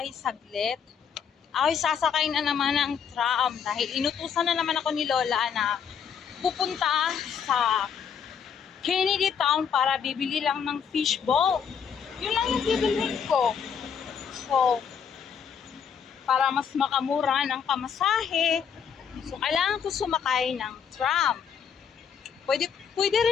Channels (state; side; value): quieter; right; 7.3 dB